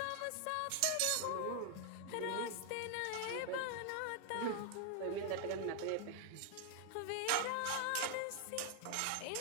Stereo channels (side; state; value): both; different; correlation 0.00